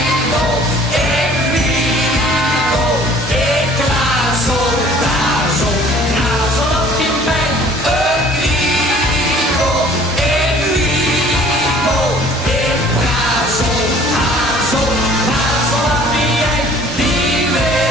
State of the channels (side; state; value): both; normal; correlation 0.52